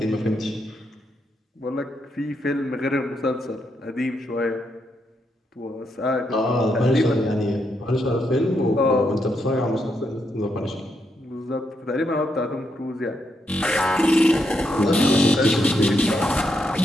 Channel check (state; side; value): normal; both; correlation 0.80